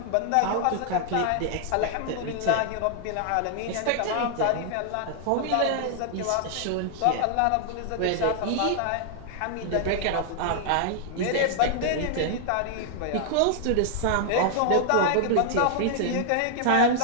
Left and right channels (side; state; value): both; different; correlation -0.01